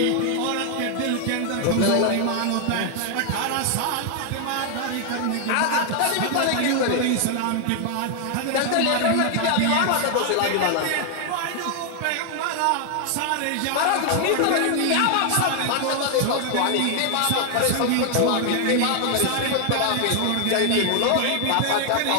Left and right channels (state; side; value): different; both; correlation 0.00